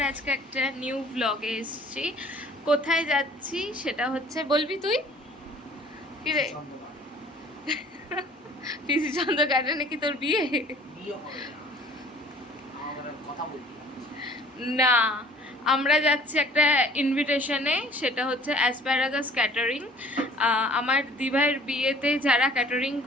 আজকে একটা নিউ ব্লগে এসেছি। কোথায় যাচ্ছি সেটা হচ্ছে, বলবি তুই? কি রে, পিসি চন্দ্র গার্ডেনে কি তোর বিয়ে? না, আমরা যাচ্ছি একটা ইনভিটেশনে, সেটা হচ্ছে অ্যাসপ্যারাগাস ক্যাটারিং। আমার দিভাইয়ের বিয়েতে যারা ক্যাটারিং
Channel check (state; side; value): normal; both; correlation 0.52